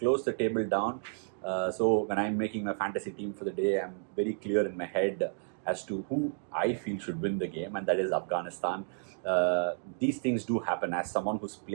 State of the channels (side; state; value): left; silent; digital silence